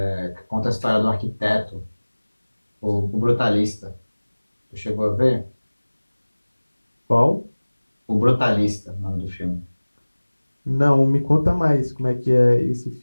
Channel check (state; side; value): inverted; both; correlation -1.00